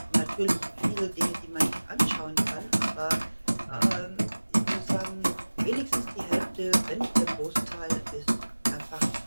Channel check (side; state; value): both; inverted; correlation -1.00